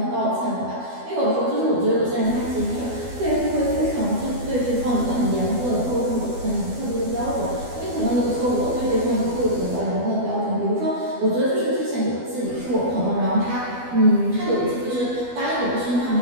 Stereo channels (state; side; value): late; left; 12 ms